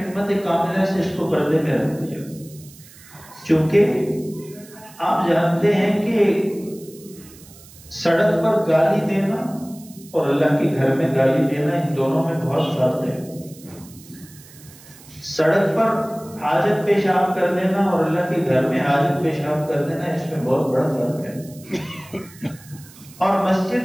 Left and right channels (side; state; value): right; noise; hiss, 22 dB below the sound